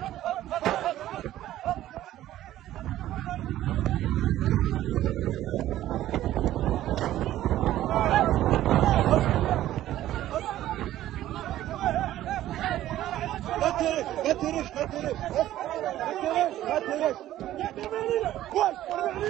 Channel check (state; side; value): quieter; left; 13.6 dB